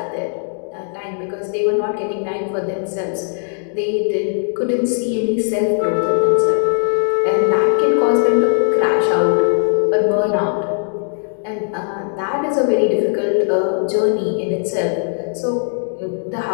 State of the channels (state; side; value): silent; right; digital silence